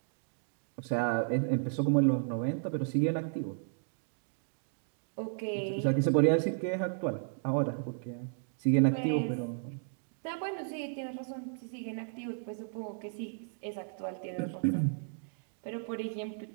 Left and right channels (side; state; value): left; silent; digital silence